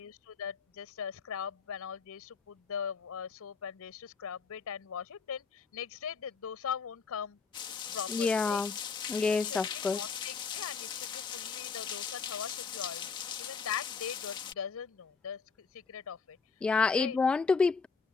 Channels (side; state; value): right; quieter; 5.1 dB